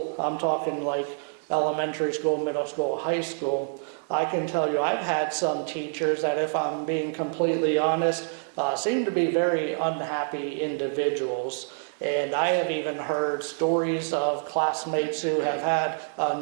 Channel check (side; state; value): left; silent; 60 dB below the other